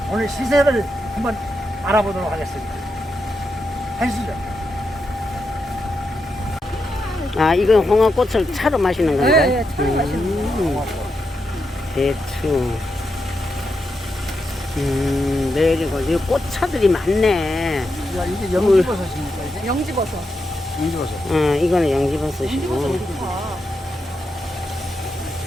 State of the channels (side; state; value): both; normal; correlation 0.85